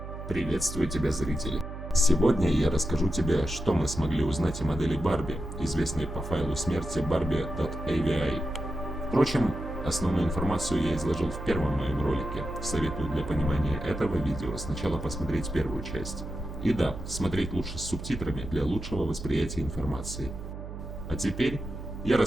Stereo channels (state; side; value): noise; right; hum, 9 dB below the sound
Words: Приветствую тебя, зрители! Сегодня я расскажу тебе, что мы смогли узнать о модели Барби, известной по файлу смерти barbie.avi. Впрочем, основную информацию я изложил в первом моем ролике. Советую для понимания этого видео сначала посмотреть первую часть. И да, смотреть лучше с субтитрами для лучшего восприятия информации. А теперь я